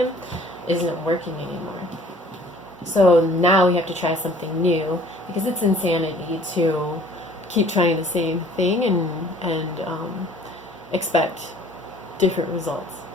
isn't working anymore. So now we have to try something new, because it's insanity to keep trying the same thing and expect different results.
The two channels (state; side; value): normal; both; correlation 0.53